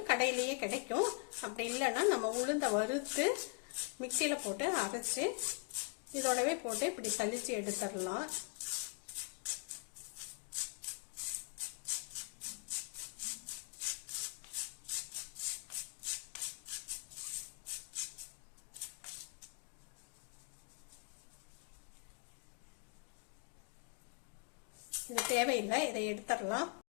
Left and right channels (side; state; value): right; quieter; 36.0 dB